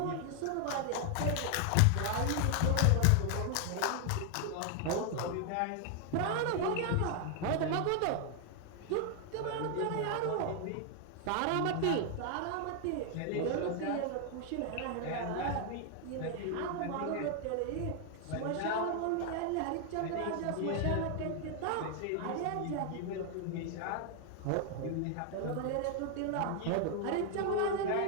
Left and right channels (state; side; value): different; both; correlation 0.00